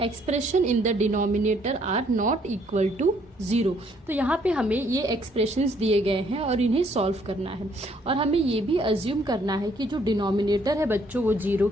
expression in the denominator are not equal to 0। तो यहाँ पे हमें ये एक्सप्रेशंस दिए गए हैं और इन्हें सॉल्व करना है और हमें ये भी अज्यूम करना है कि जो डिनोमिनेटर है बच्चों वो 0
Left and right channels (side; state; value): both; normal; correlation 0.66